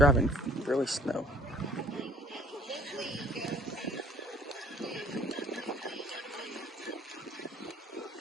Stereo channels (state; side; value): normal; both; correlation 0.56